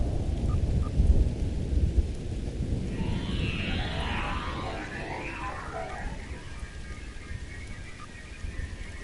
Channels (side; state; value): both; identical; correlation 1.00